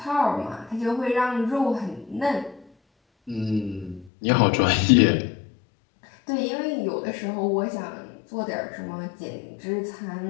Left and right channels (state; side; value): drops out; right; at 4.1 s